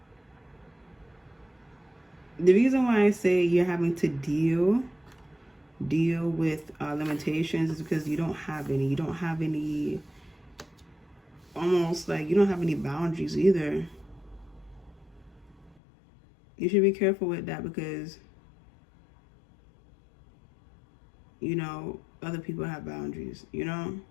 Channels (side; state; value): right; drops out; at 15.8 s